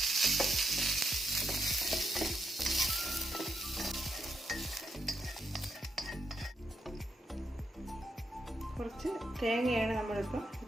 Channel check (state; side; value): normal; both; correlation 0.81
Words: കുറച്ച് തേങ്ങയാണ് നമ്മളിപ്പോൾ